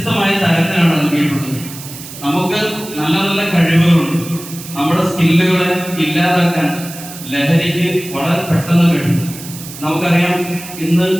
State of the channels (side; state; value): right; noise; hiss, 13 dB below the sound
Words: തരത്തിലാണ് നൽകിയിട്ടുള്ളത്. നമുക്ക് നല്ല നല്ല കഴിവുകളുണ്ട്. നമ്മുടെ സ്കില്ലുകളെ ഇല്ലാതാക്കാൻ ലഹരിക്ക് വളരെ പെട്ടെന്ന് കഴിയും. നമുക്കറിയാം, ഇന്ന്